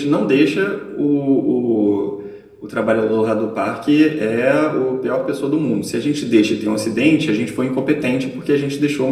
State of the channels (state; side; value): identical; both; correlation 1.00